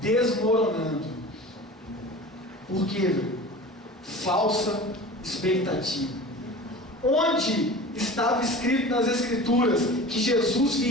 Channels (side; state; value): both; normal; correlation 0.37